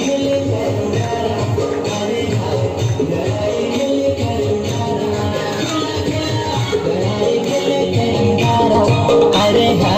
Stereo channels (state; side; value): identical; both; correlation 1.00